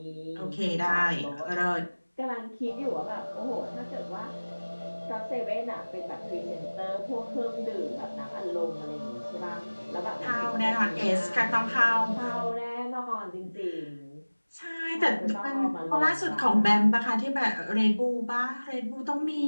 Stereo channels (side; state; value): both; inverted; correlation -1.00